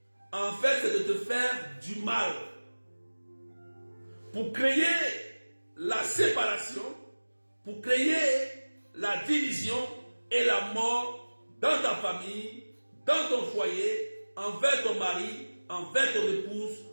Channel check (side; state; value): both; inverted; correlation -1.00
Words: En fait, c'est de te faire du mal. Pour créer la séparation, pour créer la division et la mort dans ta famille, dans ton foyer, envers ton mari, envers ton épouse,